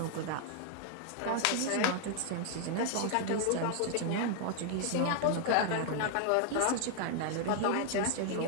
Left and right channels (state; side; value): different; both; correlation 0.00